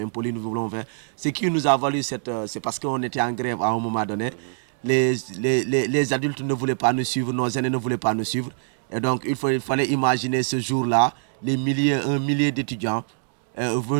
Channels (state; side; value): silent; left; digital silence